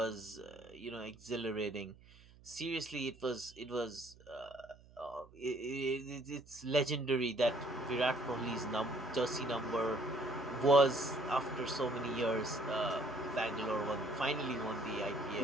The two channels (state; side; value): noise; right; hum, 24 dB below the sound